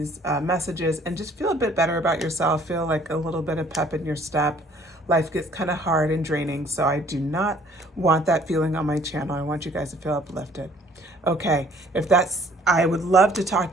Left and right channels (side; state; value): both; normal; correlation 0.57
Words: messages and just feel a bit better about yourself, feel like a little bit of pep in your step. Life gets kind of hard and draining, so I do not want that feeling on my channel. I want you guys to feel uplifted. Okay, if that's, I would love to talk